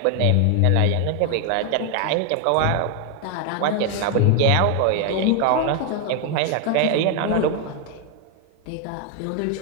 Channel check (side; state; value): both; different; correlation 0.01